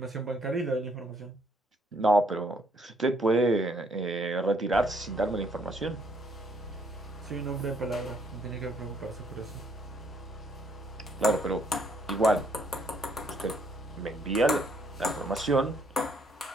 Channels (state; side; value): normal; both; correlation 0.68